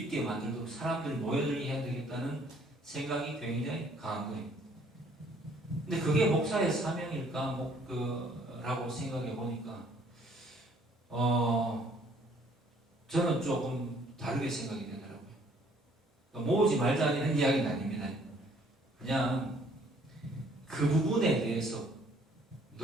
만들도록 사람들이 모여들게 해야 되겠다는 생각이 굉장히 강한 거예요. 근데 그게 목사의 사명일까? 라고 생각해 보니까 저는 조금 다르게 생각이 되더라고요. 모으지 말자는 이야기는 아닙니다. 그냥 그 부분에 대해서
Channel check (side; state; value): both; normal; correlation 0.61